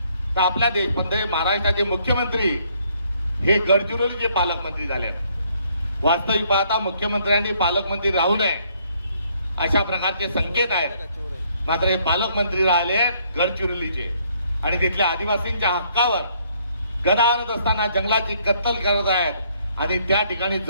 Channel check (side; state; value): both; inverted; correlation -0.67